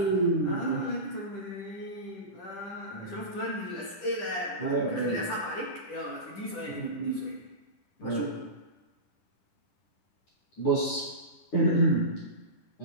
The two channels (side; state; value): right; late; 10 ms